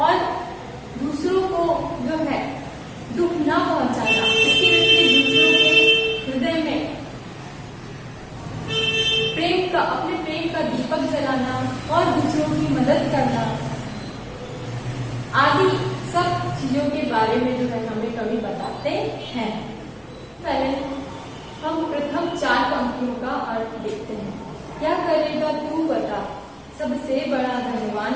और दूसरों को जो है दुख न पहुंचाना, इसके विपरीत दूसरों के हृदय में अपने प्रेम का दीपक जलाना और दूसरों की मदद करना आदि सब चीजों के बारे में जो है हमें कवि बताते हैं। पहले हम प्रथम 4 पंक्तियों का अर्थ देखते हैं। क्या करेगा तू बता, सबसे बड़ा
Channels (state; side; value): identical; both; correlation 1.00